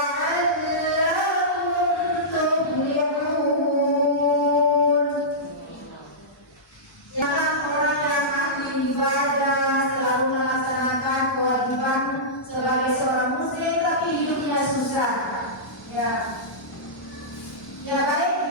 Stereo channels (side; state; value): both; normal; correlation -0.15